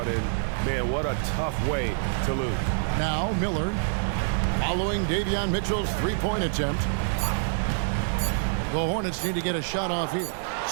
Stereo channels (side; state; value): left; silent; digital silence